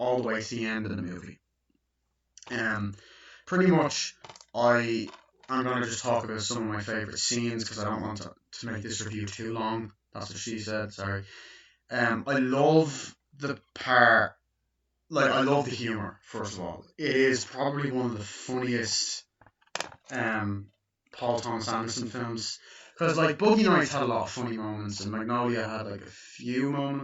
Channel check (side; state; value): both; identical; correlation 1.00